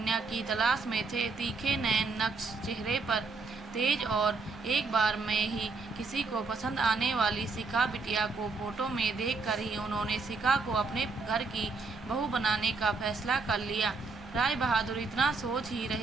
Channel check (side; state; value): left; quieter; 4.1 dB